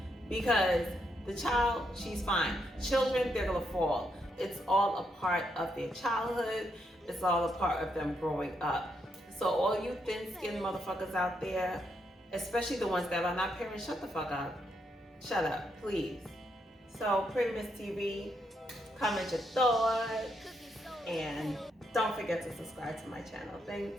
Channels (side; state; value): both; normal; correlation 0.79